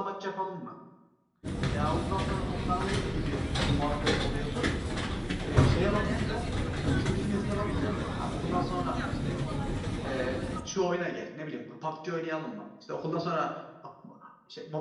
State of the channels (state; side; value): identical; both; correlation 1.00